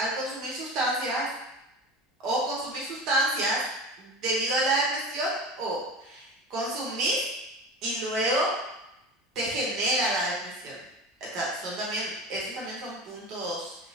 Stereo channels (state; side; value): normal; both; correlation 0.31